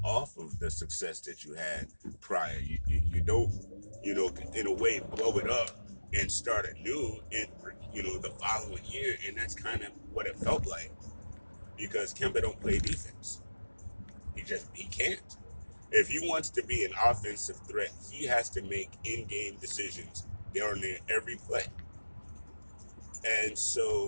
off of the success that you had prior. You don't, in a way, blow it up and start anew in, the following year. And that's kind of what it felt like because Kemba don't play defense. He can't. If he wants to be an offensive threat, he has to make in-game decisions during every play. And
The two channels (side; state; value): both; inverted; correlation -1.00